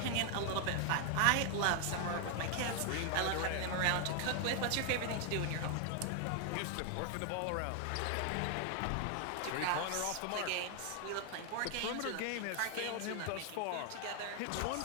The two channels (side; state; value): both; different; correlation 0.00